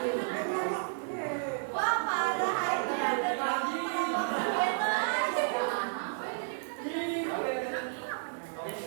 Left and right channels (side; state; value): left; silent; digital silence